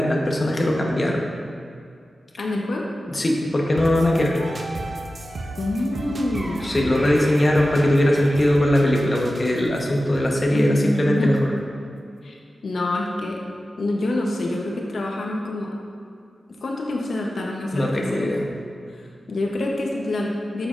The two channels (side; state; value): both; normal; correlation 0.94